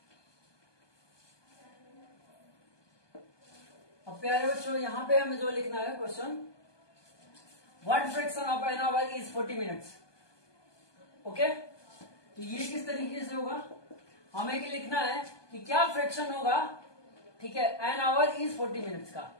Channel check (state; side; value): late; right; 1.2 ms